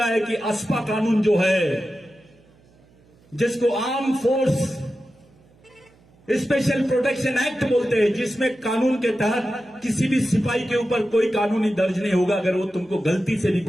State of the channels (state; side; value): noise; right; hum, 30 dB below the sound